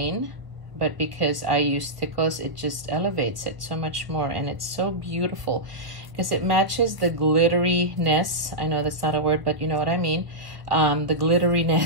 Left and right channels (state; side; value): late; left; 1.0 ms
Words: But because I use stickles, it just elevates it so much more. And it's so beautiful because it matches the glitteriness. I know that's not a word, but you know what I mean. The